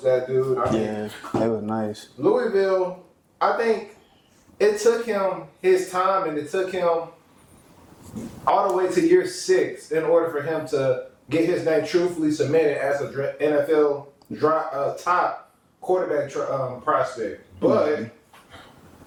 that dude. Yeah, they were nice. Louisville, I think it took him his time, and it took him all the way to year 6 in order for him to get his name truthfully submitted as an NFL top quarterback prospect. But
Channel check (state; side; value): identical; both; correlation 1.00